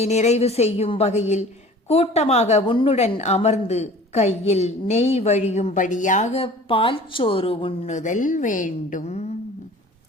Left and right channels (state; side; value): normal; both; correlation 0.45